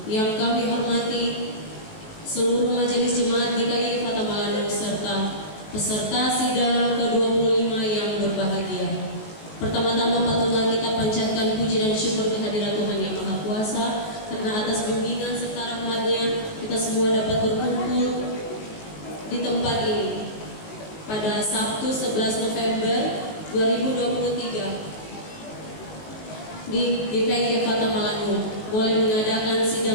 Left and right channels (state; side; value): late; right; 18 ms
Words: Yang kami hormati seluruh majelis jemaat GKI Efata Malanu serta peserta sidang ke-25 yang berbahagia. Pertama-tama patutlah kita panjatkan puji dan syukur kehadirat Tuhan Yang Maha Kuasa, karena atas bimbingan serta rahmat-Nya kita semua dapat berkumpul di tempat ini pada Sabtu 11 November 2023 di GKI Efata Malanu boleh mengadakan